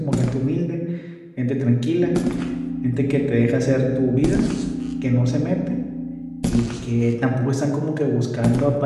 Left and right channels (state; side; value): identical; both; correlation 1.00